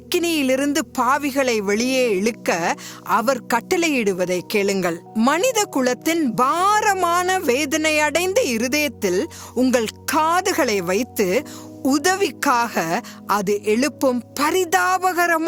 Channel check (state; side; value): identical; both; correlation 1.00